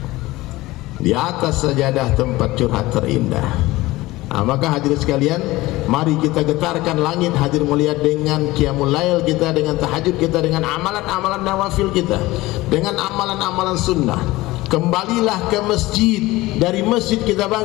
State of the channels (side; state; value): right; quieter; 19.0 dB